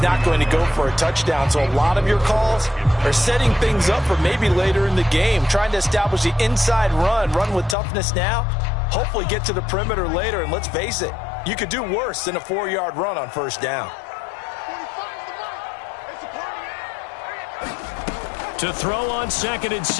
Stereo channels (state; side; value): drops out; right; at 7.8 s